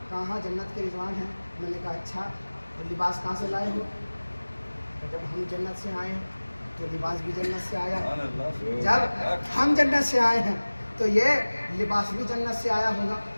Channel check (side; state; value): both; inverted; correlation -1.00